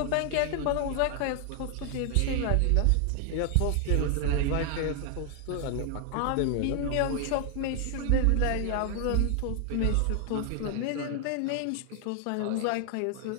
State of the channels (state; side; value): different; both; correlation 0.00